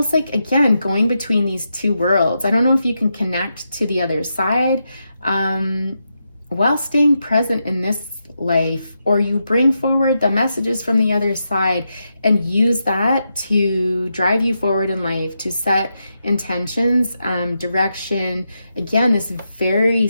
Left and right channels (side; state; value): both; inverted; correlation -0.85